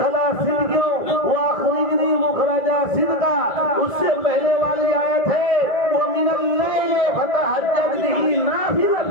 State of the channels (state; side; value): late; right; 1.8 ms